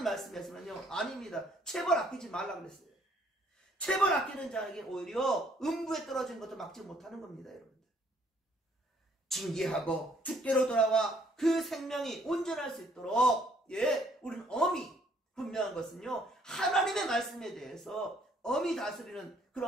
말씀에서는요, 아닙니다. 체벌 아끼지 말라 그랬어요. 체벌 아끼는 자에게 오히려 음부에 떨어진 것도 막지 못하는 겁니다, 여러분들. 징계하고 주께로 돌아와 그 생명이 온전할 수 있도록, 우리는 엄히 분명한 것은요, 하나님의 말씀에 대해서 엄히 다스리는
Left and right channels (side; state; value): both; normal; correlation 0.65